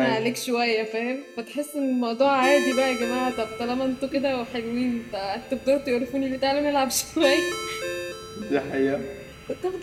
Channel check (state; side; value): identical; both; correlation 1.00